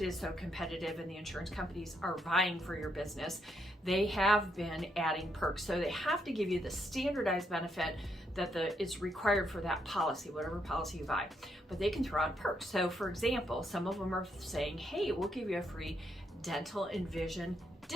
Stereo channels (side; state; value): both; normal; correlation 0.76